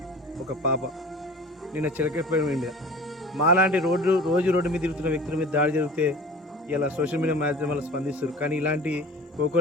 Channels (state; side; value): normal; both; correlation 0.41